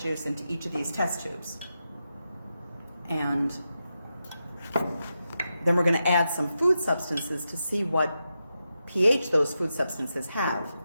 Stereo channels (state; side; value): inverted; both; correlation -0.88